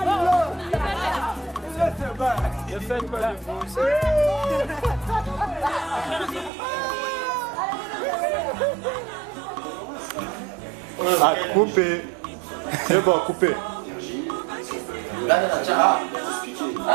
Ah, coupé. C'est bon, coupé.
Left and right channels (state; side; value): drops out; left; at 6.5 s